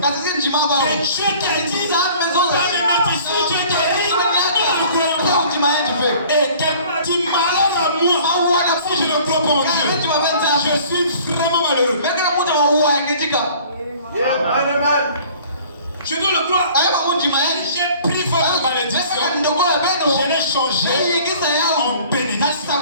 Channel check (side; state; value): both; inverted; correlation -0.50